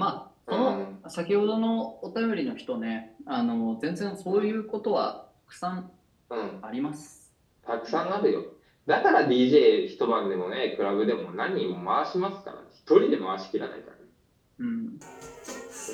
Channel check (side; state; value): both; identical; correlation 1.00